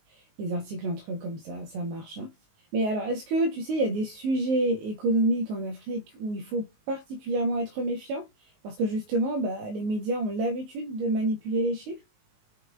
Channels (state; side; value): late; left; 19 ms